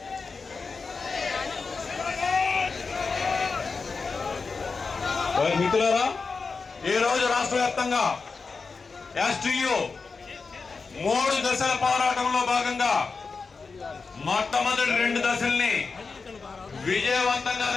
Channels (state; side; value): quieter; right; 4.6 dB